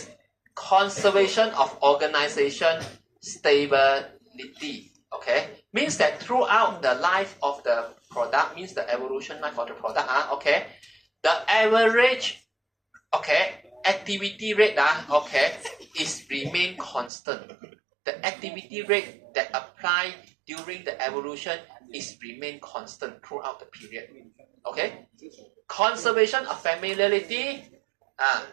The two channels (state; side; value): drops out; left; at 17.1 s